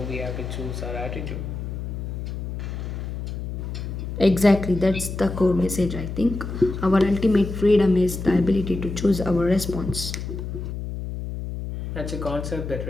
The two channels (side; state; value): left; noise; hum, 6 dB below the sound